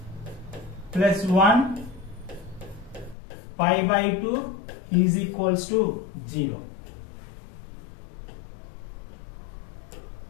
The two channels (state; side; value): drops out; right; at 3.2 s